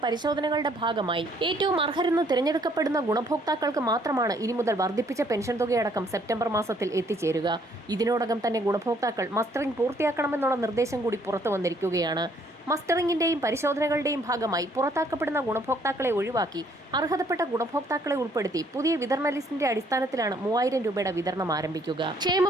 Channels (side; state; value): both; normal; correlation 0.65